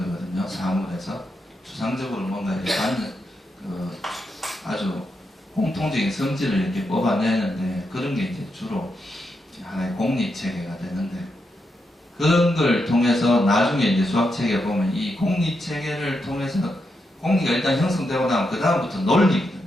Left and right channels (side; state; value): both; normal; correlation 0.84